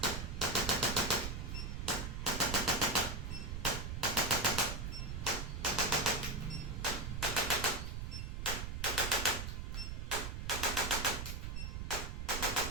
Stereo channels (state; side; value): noise; right; rumble, 4 dB below the sound